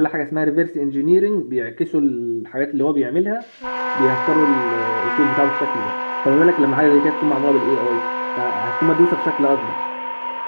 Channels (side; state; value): both; inverted; correlation -1.00